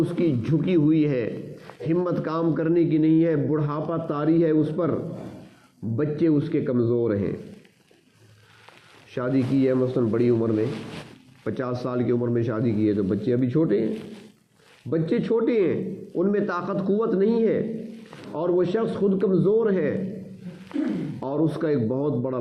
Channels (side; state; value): both; identical; correlation 1.00